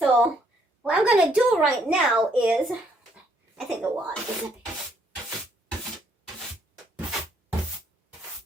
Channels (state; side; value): normal; both; correlation 0.69